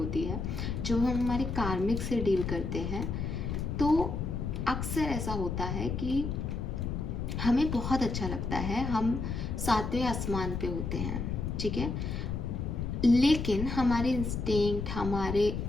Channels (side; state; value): left; noise; rumble, 3 dB below the sound